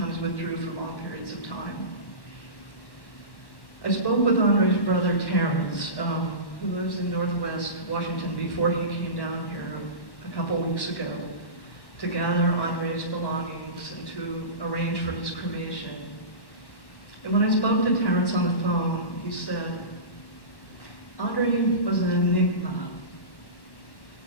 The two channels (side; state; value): right; late; 1.1 ms